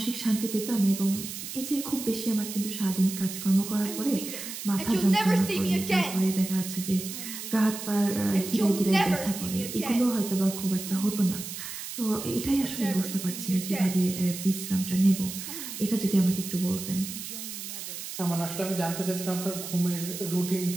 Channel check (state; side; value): noise; right; hiss, 8 dB below the sound